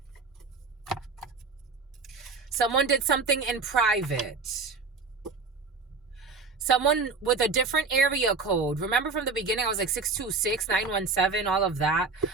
Someone did something in private. Someone with a different area code. Remember from the beginning, I was like 626, 917, all of that.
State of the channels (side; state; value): left; quieter; 4.4 dB